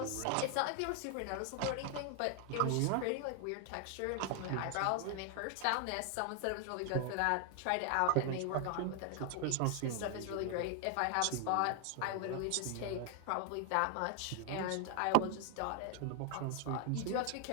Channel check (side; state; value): both; different; correlation 0.00